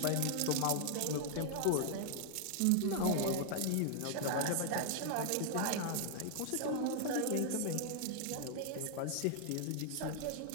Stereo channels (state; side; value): different; both; correlation 0.00